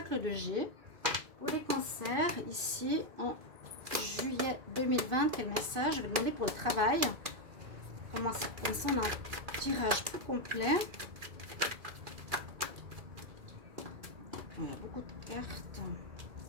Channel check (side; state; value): left; late; 2.5 ms